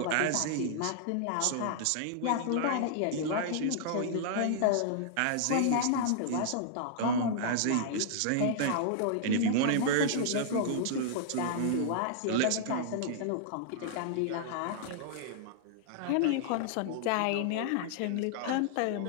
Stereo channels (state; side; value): different; both; correlation -0.01